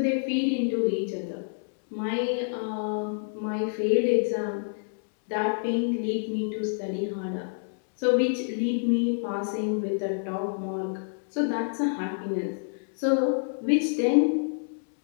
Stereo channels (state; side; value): silent; right; digital silence